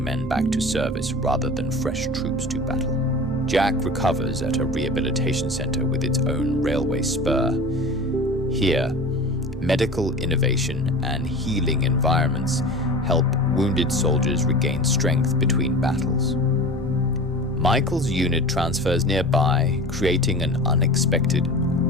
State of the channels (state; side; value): normal; both; correlation 0.35